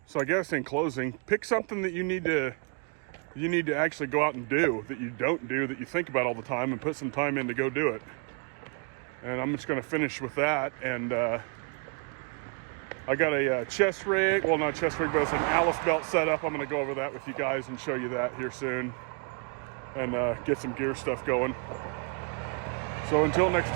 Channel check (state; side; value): quieter; left; 36.8 dB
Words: So I guess in closing, pick something that you need to actually go out and do, that you don't do, that you think about all the time, and put some time in to go do it. And I'm just going to finish with that. And I got a chest rig, well, not chest rig, but it's an Alice belt set up. I'm going to go over that with you guys and show you that here soon, and get some gear stuff going. So until next